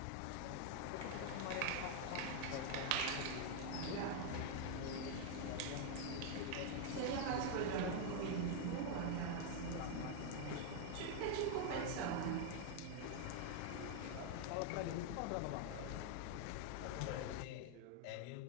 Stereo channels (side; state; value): both; different; correlation 0.00